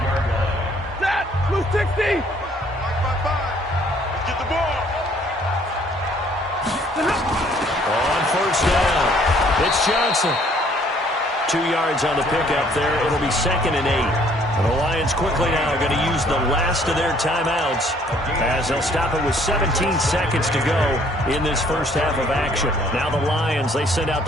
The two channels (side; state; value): both; normal; correlation 0.61